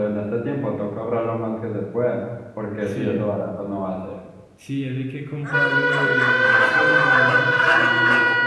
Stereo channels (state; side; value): identical; both; correlation 1.00